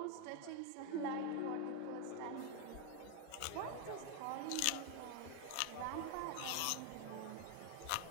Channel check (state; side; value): different; both; correlation 0.01